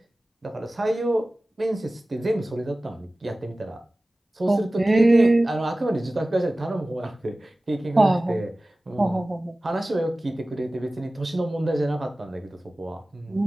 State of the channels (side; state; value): both; normal; correlation 0.97